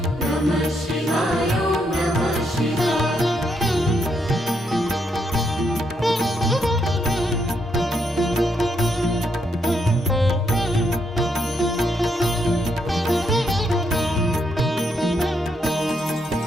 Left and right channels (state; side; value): normal; both; correlation 0.77